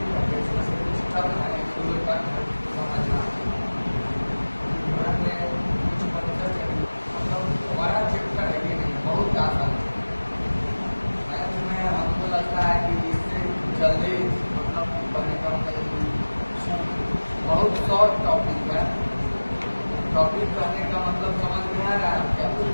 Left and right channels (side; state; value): both; inverted; correlation -1.00